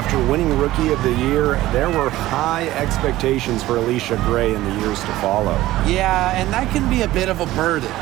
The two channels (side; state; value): left; quieter; 16.1 dB